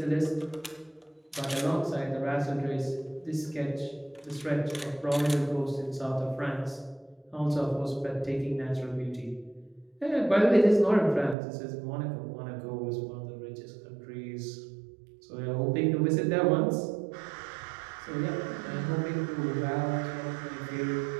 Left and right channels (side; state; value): left; drops out; at 11.4 s